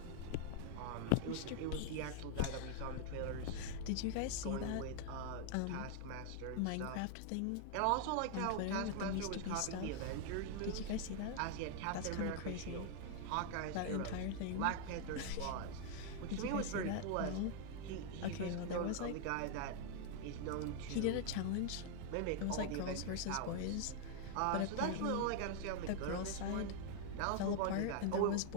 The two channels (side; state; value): both; different; correlation 0.00